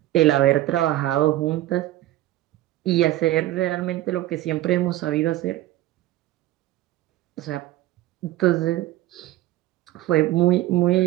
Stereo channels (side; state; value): left; quieter; 15.3 dB